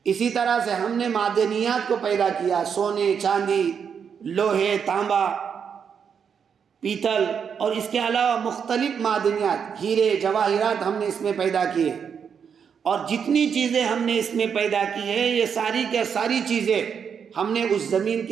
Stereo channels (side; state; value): left; quieter; 7.0 dB